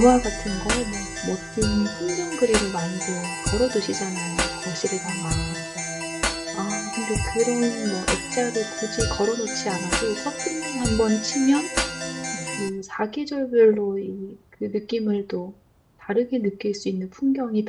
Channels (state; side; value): identical; both; correlation 1.00